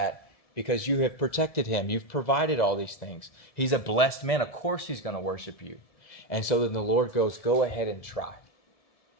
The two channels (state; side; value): late; right; 1.7 ms